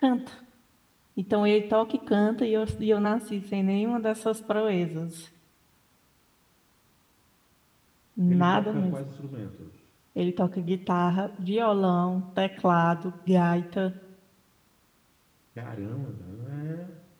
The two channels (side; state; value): both; identical; correlation 1.00